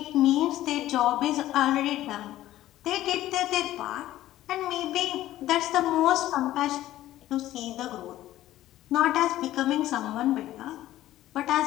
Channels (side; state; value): right; quieter; 14.3 dB